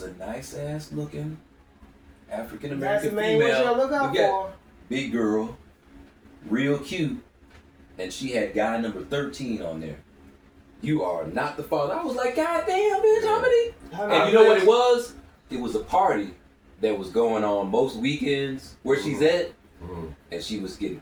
a nice ass looking African That's the American main one you female. gotta look out We got for. big girl, real cute, and she had guy number 13 on there. You are not the father. I was like, God damn, bitch, how many? And you know what it was? It was a party that was going on most weekends where she's at, and she was getting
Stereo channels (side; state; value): both; identical; correlation 1.00